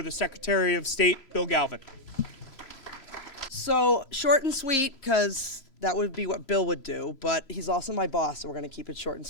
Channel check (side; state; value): right; late; 3.0 ms